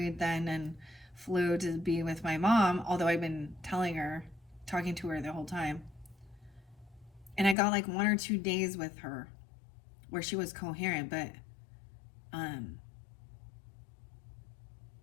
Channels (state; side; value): drops out; right; at 7.6 s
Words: then and flew to be with my mom, although I've been talking to her the whole time. And I got like 1 or 2 days with her where she was coherent, but um